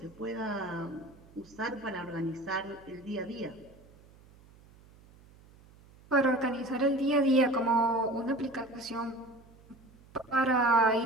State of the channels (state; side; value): noise; right; hum, 25 dB below the sound